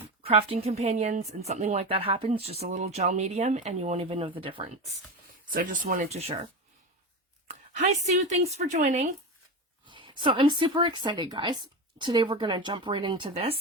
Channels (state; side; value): normal; both; correlation 0.21